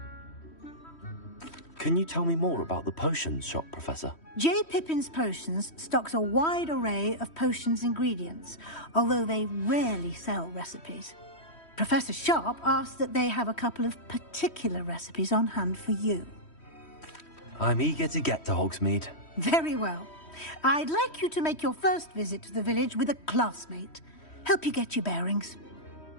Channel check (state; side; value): late; right; 3.1 ms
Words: Can you tell me more about the potions shop, Professor? J. Pippin's Potions stocks a wide array of potions ingredients, although they rarely sell recipes. Professor Sharp asked that they have a couple of particular recipes on hand for you. I'm eager to get to Hogsmeade. Very well. I'd like you to make your first visit to the village with a classmate. Help you get your bearings.